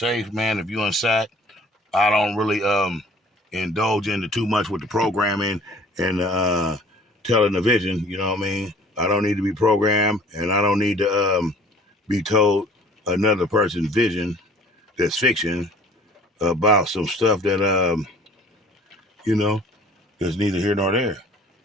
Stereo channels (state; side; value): normal; both; correlation 0.51